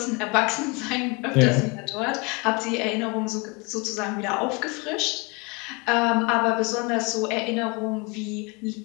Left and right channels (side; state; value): right; quieter; 28.6 dB